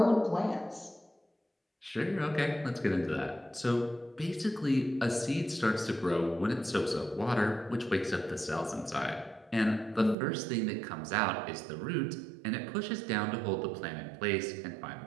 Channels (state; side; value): drops out; left; at 10.2 s